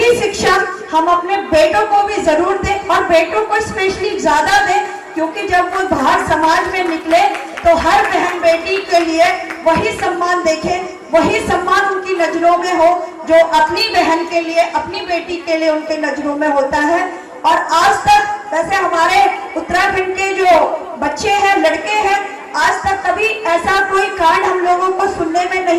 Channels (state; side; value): identical; both; correlation 1.00